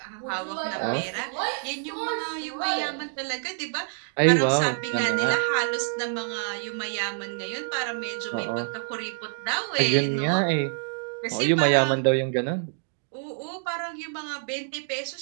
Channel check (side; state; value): left; silent; digital silence